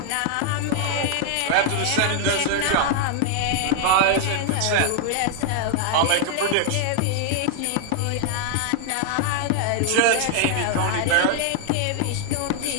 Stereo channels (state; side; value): different; both; correlation 0.00